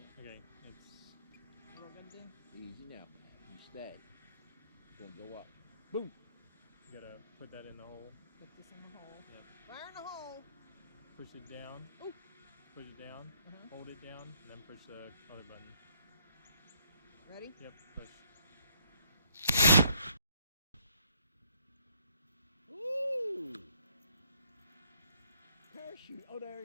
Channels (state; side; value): inverted; both; correlation -0.69